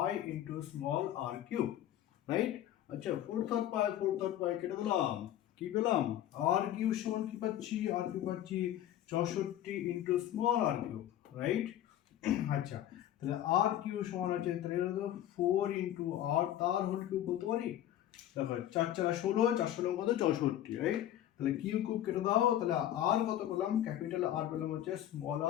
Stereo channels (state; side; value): quieter; right; 12.1 dB